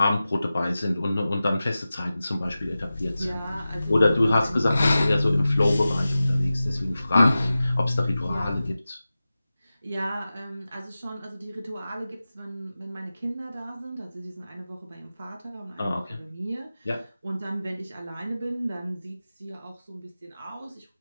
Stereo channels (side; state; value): both; inverted; correlation -0.95